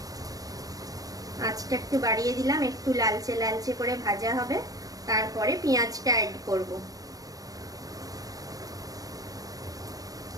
আঁচটা একটু বাড়িয়ে দিলাম, একটু লালচে লালচে করে ভাজা হবে, তারপরে পেঁয়াজটা অ্যাড করব।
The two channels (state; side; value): late; left; 0.18 ms